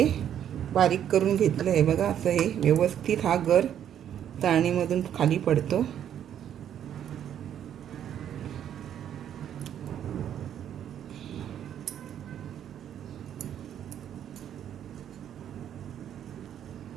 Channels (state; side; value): quieter; left; 9.9 dB